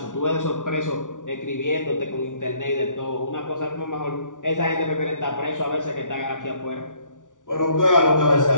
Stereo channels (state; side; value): late; right; 0.87 ms